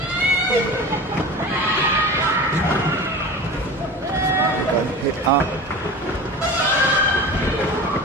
Got hit up.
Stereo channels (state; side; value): normal; both; correlation 0.34